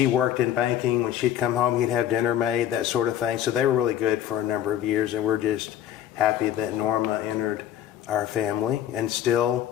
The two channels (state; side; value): quieter; right; 11.1 dB